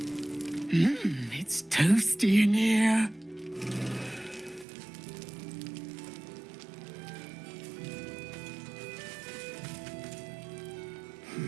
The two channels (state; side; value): drops out; left; at 4.7 s